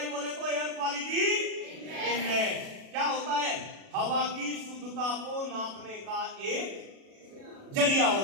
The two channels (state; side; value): late; left; 36 ms